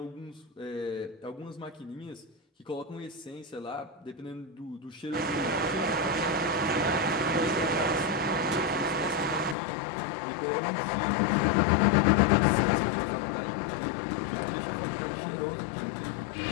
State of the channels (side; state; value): right; drops out; at 9.6 s